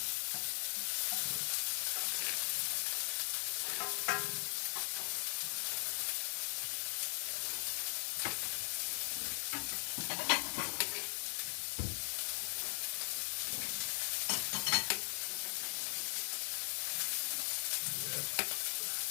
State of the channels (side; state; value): right; silent; digital silence